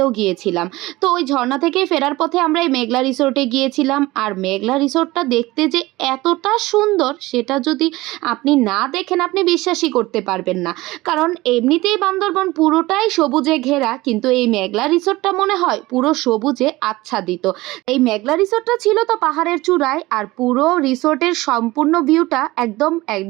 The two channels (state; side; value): quieter; left; 19.5 dB